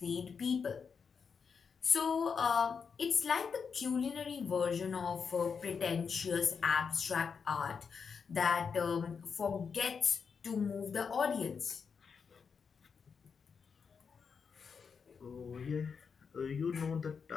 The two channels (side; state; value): right; quieter; 6.0 dB